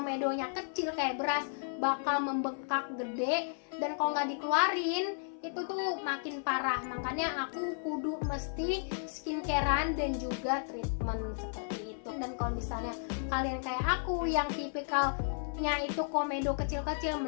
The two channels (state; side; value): silent; right; 55 dB below the other